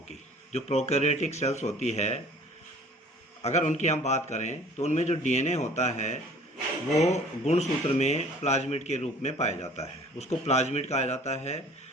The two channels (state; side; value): normal; both; correlation 0.50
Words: जो प्रोकैरियोटिक सेल्स होती है, अगर उनकी हम बात करें तो उनमें जो डीएनए होता है वो गुणसूत्र में प्लाज्मिड के रूप में पाया जाता है, उसको प्लाज्मिड कहा जाता है।